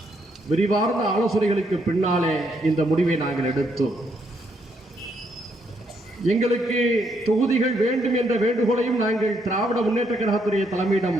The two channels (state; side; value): normal; both; correlation 0.74